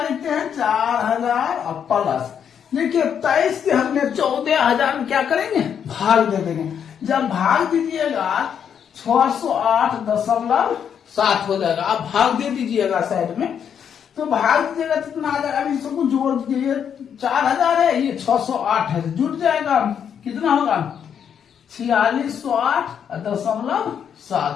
लिखते हैं? 4000 और प्लस, देखिए 23 से हमने 14000 में क्या करेंगे? भाग दे देंगे। जब भाग दीजिएगा 608.7 हो जाएगा। आप भाग दे दीजिएगा साइड में, तो भाग दीजिएगा कितना आ जाएगा? अभी सबको जोड़ दीजिए। 4000 है, ये 608 है, जुट जाएगा। कितना होगा? 4608.7।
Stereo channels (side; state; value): right; quieter; 8.1 dB